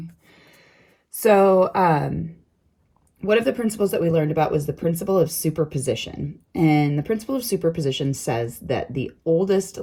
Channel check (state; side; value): identical; both; correlation 1.00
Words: So one of the principles that we learned about was the principle of superposition. And the principle of superposition says that the oldest